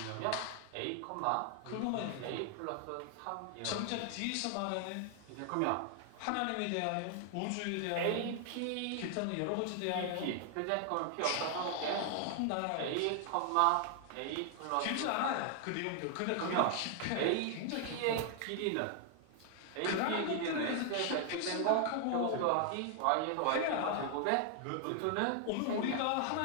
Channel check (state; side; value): different; both; correlation 0.00